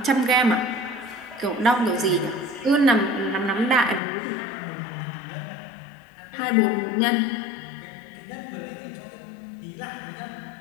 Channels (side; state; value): right; drops out; at 4.0 s